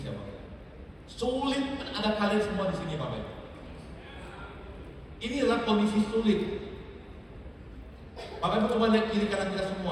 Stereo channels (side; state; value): both; identical; correlation 1.00